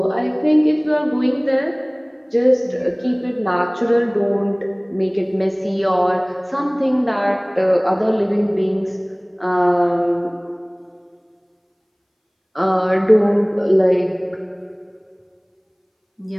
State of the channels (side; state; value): both; identical; correlation 1.00